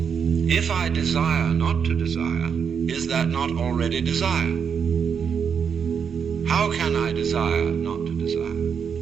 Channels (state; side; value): quieter; left; 6.9 dB